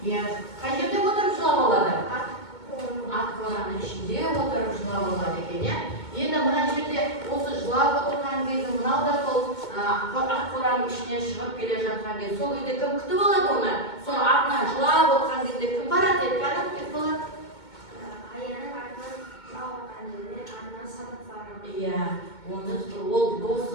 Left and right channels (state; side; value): late; right; 2.2 ms